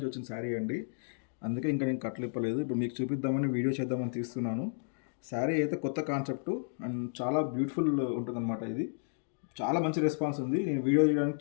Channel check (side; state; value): right; silent; digital silence